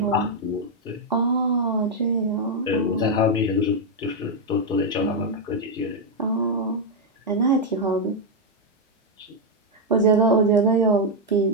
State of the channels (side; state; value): both; normal; correlation 0.00